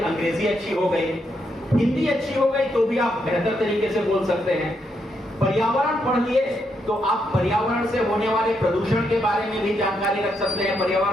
अच्छी हो गई, हिंदी अच्छी हो गई, तो भी आप बेहतर तरीके से बोल सकते हैं। पर्यावरण पढ़ लिए तो आप पर्यावरण से होने वाले प्रदूषण के बारे में भी जानकारी रख सकते हैं।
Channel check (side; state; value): both; normal; correlation 0.79